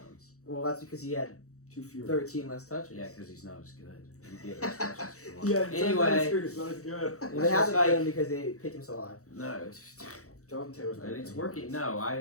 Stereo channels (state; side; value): late; right; 0.65 ms